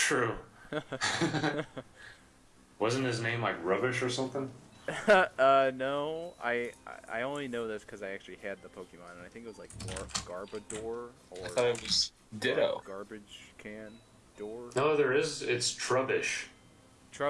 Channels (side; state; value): both; identical; correlation 1.00